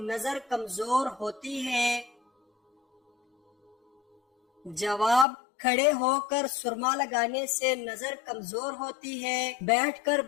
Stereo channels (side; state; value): right; drops out; at 5.2 s